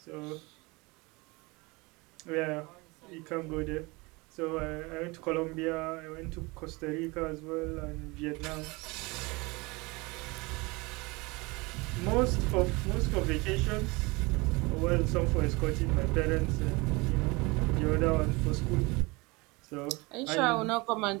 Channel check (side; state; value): left; quieter; 25.2 dB